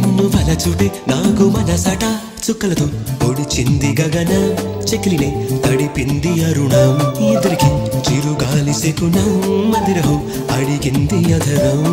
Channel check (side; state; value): both; identical; correlation 1.00